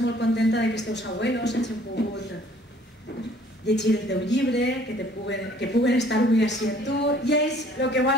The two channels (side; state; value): both; normal; correlation 0.56